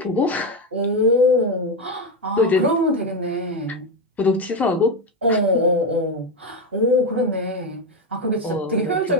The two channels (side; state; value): both; normal; correlation 0.11